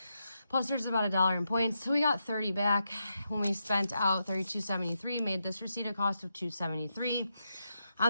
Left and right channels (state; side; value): inverted; both; correlation -0.85